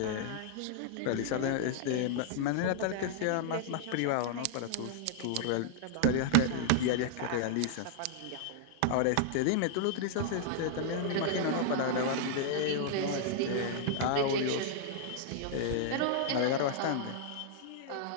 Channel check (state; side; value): different; both; correlation -0.01